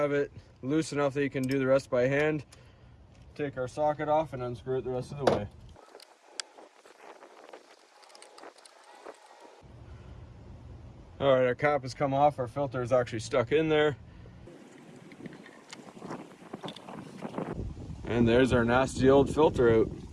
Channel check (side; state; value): both; identical; correlation 1.00